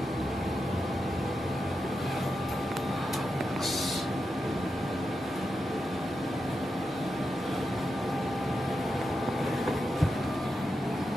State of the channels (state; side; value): normal; both; correlation 0.88